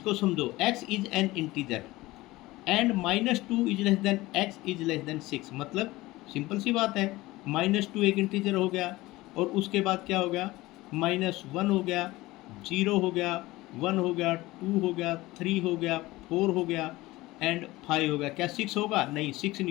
समझो, x is an integer and -2 is less than x is less than 6। मतलब सिंपल सी बात है, -2 एक इंटीजर हो गया और उसके बाद क्या हो गया, -1 हो गया, 0 हो गया, 1 हो गया, 2 हो गया, 3 हो गया, 4 हो गया एंड 5 हो गया। क्या 6 होगा? नहीं, 6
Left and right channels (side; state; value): right; quieter; 19.1 dB